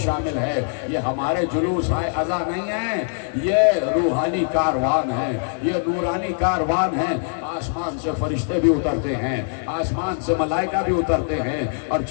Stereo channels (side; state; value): right; silent; digital silence